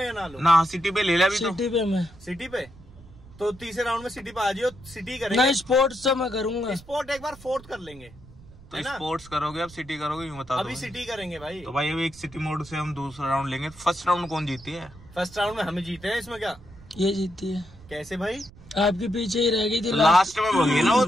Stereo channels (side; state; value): right; noise; rumble, 21 dB below the sound